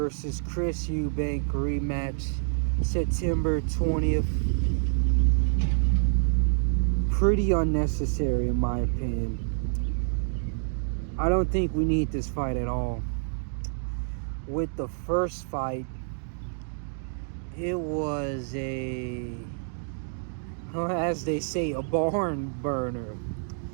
Chris Eubank rematch, September 20th. Pretty unnecessary in my opinion. I don't think we need this fight at all. With the first fight, it was as they say, a barn burner.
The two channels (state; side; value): silent; left; digital silence